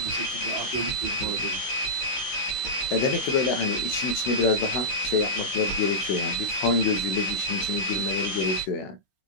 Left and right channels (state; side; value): late; right; 16 ms